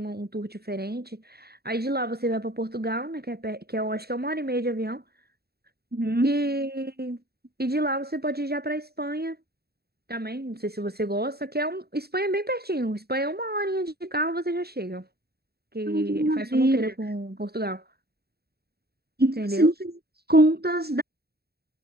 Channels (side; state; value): left; late; 0.46 ms